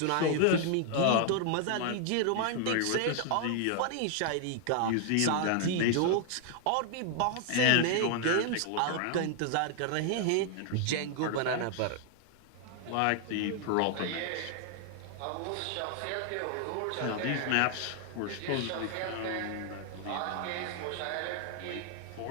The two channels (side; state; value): both; different; correlation 0.00